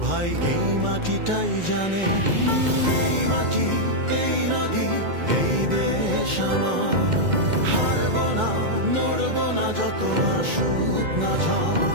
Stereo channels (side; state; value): left; late; 2.1 ms